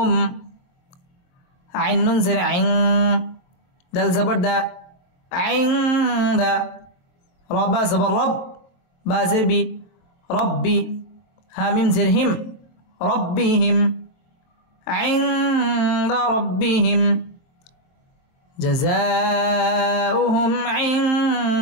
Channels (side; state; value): right; late; 23 ms